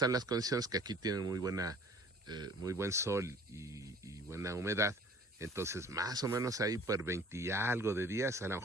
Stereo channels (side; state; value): both; normal; correlation 0.50